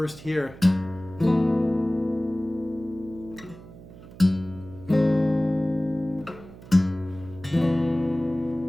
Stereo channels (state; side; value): noise; right; hum, 18 dB below the sound